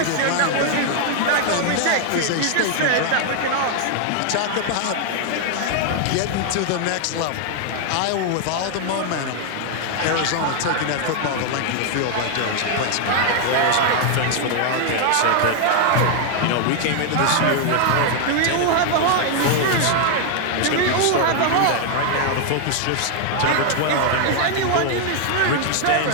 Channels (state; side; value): different; both; correlation 0.00